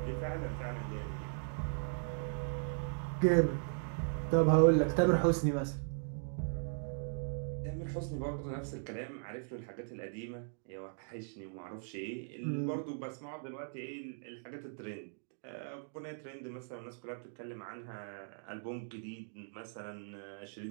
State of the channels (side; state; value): left; silent; digital silence